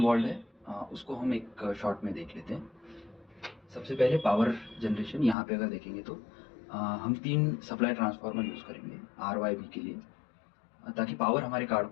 है उसको हम एक शॉर्ट में देख लेते हैं। सबसे पहले पावर जनरेशन। यहाँ पे अगर देखेंगे तो हम 3 सप्लाई ट्रांसफार्मर यूज़ करेंगे RYB के लिए, ताकि पावर हमारे कार्ड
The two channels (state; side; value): drops out; right; at 5.4 s